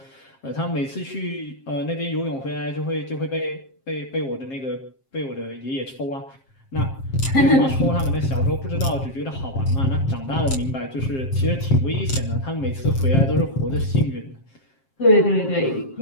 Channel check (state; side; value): late; right; 7.5 ms